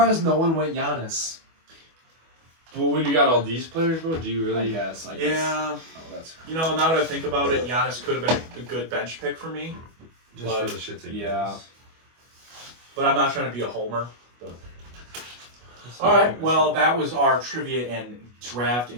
no one went Giannis. But when you got all these players, bro, do you I really? guess. Yeah, Oh, that's you know, now that I think about it, Giannis could have been a good bench pick for me, Just But- for the shits and yeah. gigs. but I'm not trying to be a homer. But... All right, well, that was our trivia and draft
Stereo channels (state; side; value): late; left; 25 ms